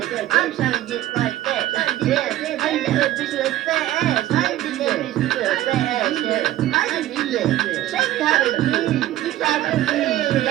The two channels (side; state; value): left; quieter; 14.1 dB